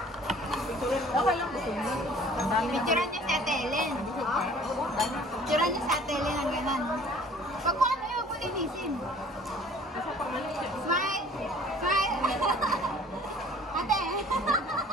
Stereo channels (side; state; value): both; normal; correlation 0.51